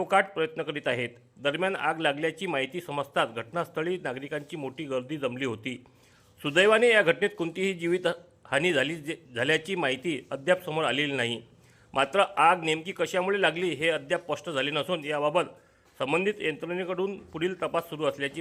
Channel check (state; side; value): identical; both; correlation 1.00